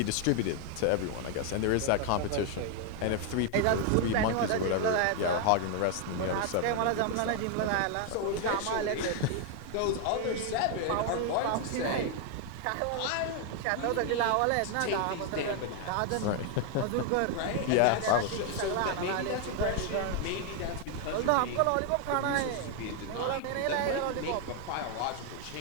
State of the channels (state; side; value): different; both; correlation 0.00